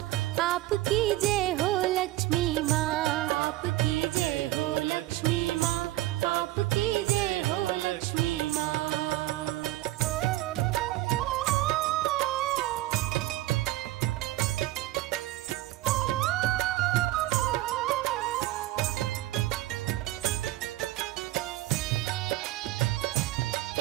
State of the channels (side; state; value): left; quieter; 16.5 dB